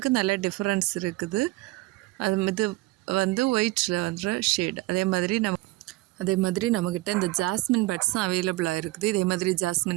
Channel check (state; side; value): quieter; left; 19.9 dB